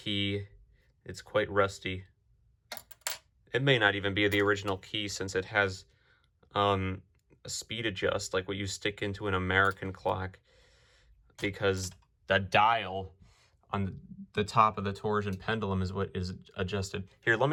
It's quite rusty. It may not even be the original key since it has a speed adjust like what you stick into an American clock, because the dial on the top of the torsion pendulum is what is adjusted. Here, let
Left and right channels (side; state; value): both; identical; correlation 1.00